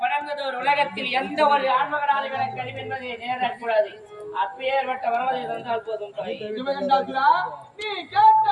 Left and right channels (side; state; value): both; identical; correlation 1.00